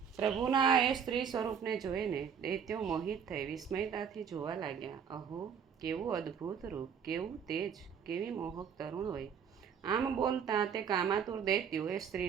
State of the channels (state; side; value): quieter; left; 7.4 dB